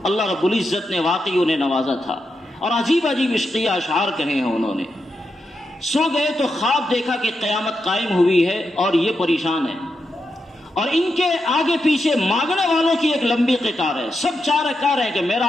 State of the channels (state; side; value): normal; both; correlation 0.86